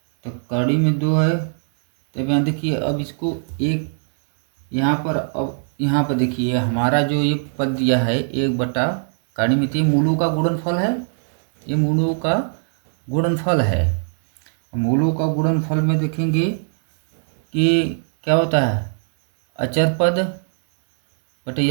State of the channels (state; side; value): silent; left; digital silence